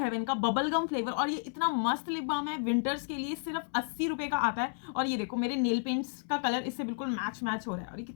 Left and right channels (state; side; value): silent; right; digital silence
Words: का बबल गम फ्लेवर, और ये इतना मस्त लिप बाम है विंटर्स के लिए, सिर्फ 80 रुपए का आता है। और ये देखो मेरे नेल पेंट्स का कलर इससे बिल्कुल मैच हो रहा है और ये